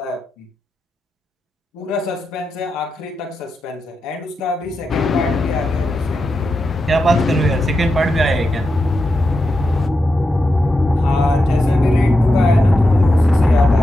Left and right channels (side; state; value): both; normal; correlation 0.88